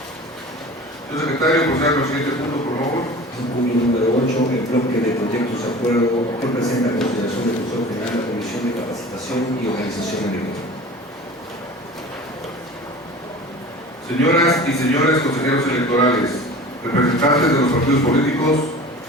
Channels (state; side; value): normal; both; correlation 0.39